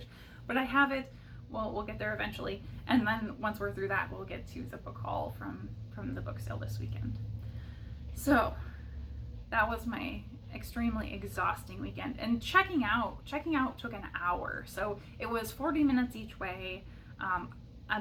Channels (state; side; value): identical; both; correlation 1.00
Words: but I have it. Well, we'll get there eventually, and then once we're through that, we'll get to the book haul from the book sale this weekend. So that was my extremely exhausting weekend, and checking out took an hour. So it was 40 minutes each way,